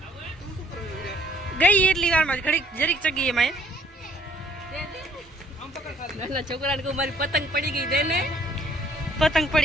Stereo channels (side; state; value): both; normal; correlation 0.62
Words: ગઈ એટલી વારમાં ઘડીક જરીક ચગી એમાં નાના છોકરાને કહું મારી પતંગ પડી ગઈ દેને પતંગ